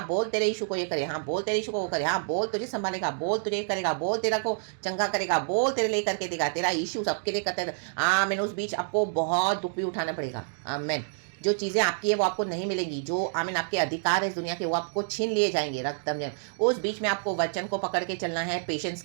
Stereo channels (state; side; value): silent; left; digital silence